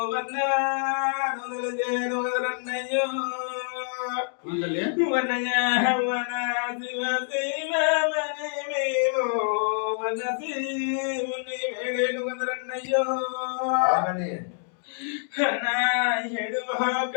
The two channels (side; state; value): right; silent; 60 dB below the other